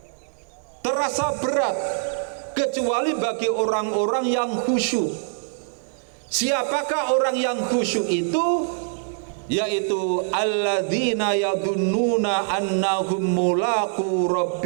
terasa berat, kecuali bagi orang-orang yang khusyuk. Siapakah orang yang khusyuk itu? Yaitu alladzina yadunnuna annahum mulaqu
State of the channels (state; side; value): silent; left; 61 dB below the other